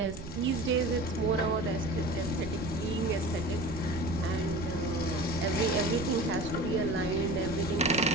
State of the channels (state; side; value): noise; right; rumble, 10 dB below the sound